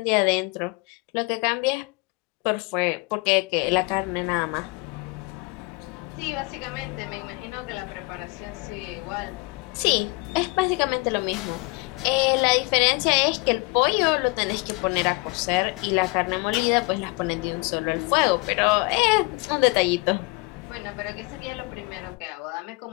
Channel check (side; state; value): right; quieter; 26.4 dB